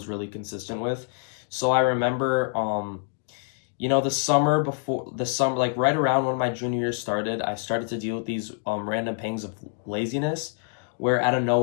really consistent with. So I remember the summer, like right around when my junior year started, I started to deal with these random pangs of laziness where out of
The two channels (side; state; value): right; silent; 61 dB below the other